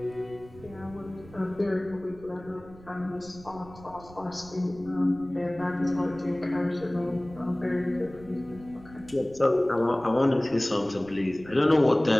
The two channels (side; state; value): right; noise; rumble, 20 dB below the sound